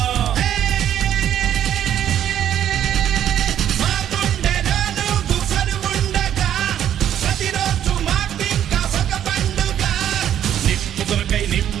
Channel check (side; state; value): left; quieter; 10.5 dB